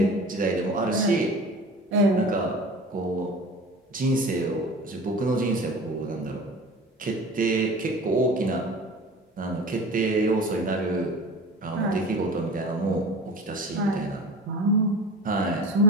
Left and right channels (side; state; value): both; normal; correlation 0.38